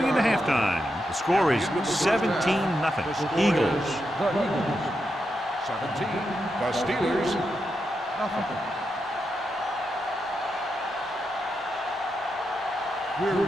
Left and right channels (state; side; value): normal; both; correlation 0.85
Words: into halftime, the score is 17-0. Eagles. 17. The Steelers, nothing. We're